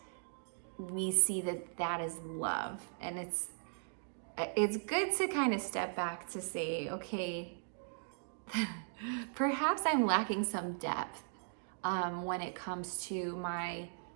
we see that that is love. And it's good to kind of step back to say, okay, perhaps I'm lacking some depth when it comes to my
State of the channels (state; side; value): silent; left; digital silence